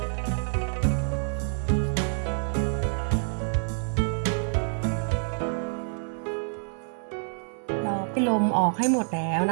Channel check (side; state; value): left; silent; 57 dB below the other